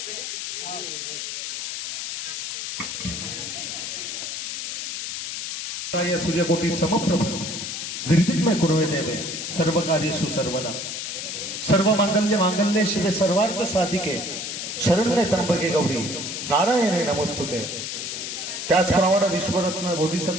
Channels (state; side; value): noise; left; hiss, 5 dB below the sound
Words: या सूर्यकोटी समप्रभ निर्विघ्न कुर्वे देवे सर्व कार्येषु सर्वदा सर्व मांगल्य शिवे सर्वार्थ साधिके शरण्ये त्र्यंबके गौरी नारायणे नमस्तुते। त्याचप्रमाणे विश्वरत्न